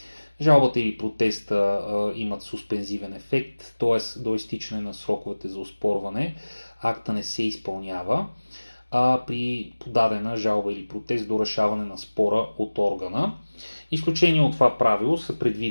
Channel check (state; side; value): inverted; both; correlation -1.00